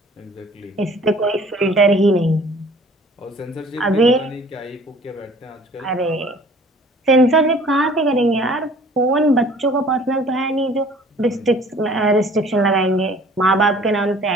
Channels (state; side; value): normal; both; correlation 0.51